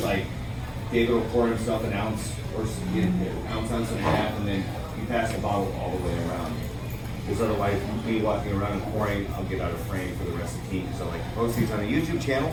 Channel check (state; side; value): identical; both; correlation 1.00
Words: like David will pour himself an ounce or ounce and a half, and then you pass the bottle all the way around. Because otherwise, me walking around and pouring, I'll get out of frame for the rest of the team. So I like to post these on a YouTube channel